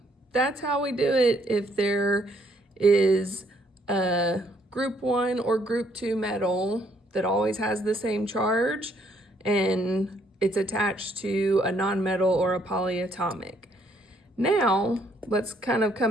that's how we do it if there is a group 1 or group 2 metal that always has the same charge and it's attached to a nonmetal or a polyatomic. Now, let's kind of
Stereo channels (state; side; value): normal; both; correlation 0.69